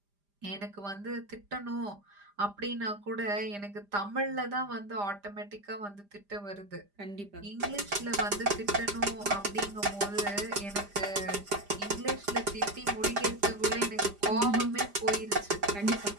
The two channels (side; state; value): left; late; 5.0 ms